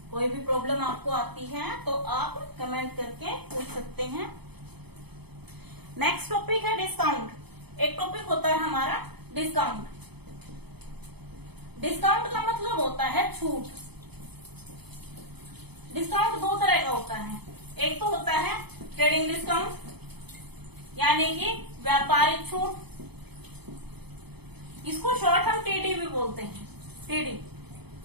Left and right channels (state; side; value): late; left; 0.98 ms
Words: कोई भी प्रॉब्लम आपको आती है तो आप कमेंट करके पूछ सकते हैं। नेक्स्ट टॉपिक है डिस्काउंट। एक टॉपिक होता है हमारा डिस्काउंट। डिस्काउंट का मतलब होता है छूट। डिस्काउंट दो तरह का होता है, एक तो होता है ट्रेडिंग डिस्काउंट यानी कि व्यापारिक छूट, इसको शॉर्ट हम टीडी भी बोलते हैं। टीडी